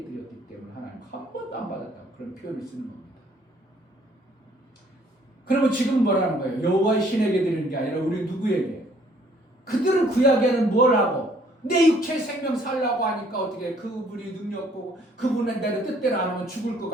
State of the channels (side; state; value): both; normal; correlation 0.61